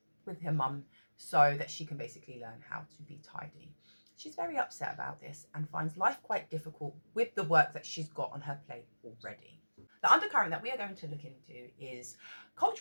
with her mum so that she can basically learn how to be tidy. She's very upset about this and finds life quite difficult with the work that she's got on her plate already. The undercurrent that we are going to look into is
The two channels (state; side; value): inverted; both; correlation -1.00